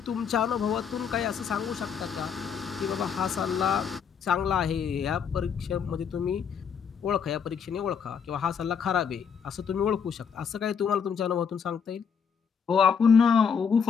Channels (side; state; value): right; quieter; 6.9 dB